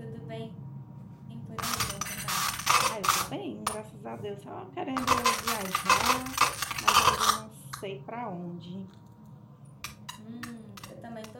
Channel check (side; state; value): both; identical; correlation 1.00